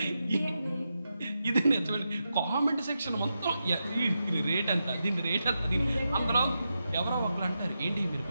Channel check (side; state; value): both; inverted; correlation -0.88